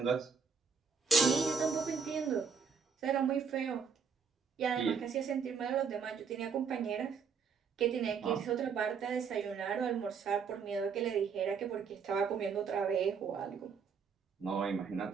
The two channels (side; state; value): left; quieter; 6.1 dB